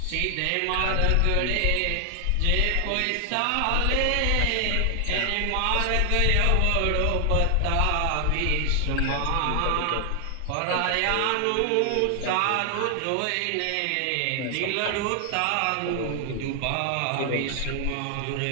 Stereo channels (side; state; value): both; different; correlation 0.00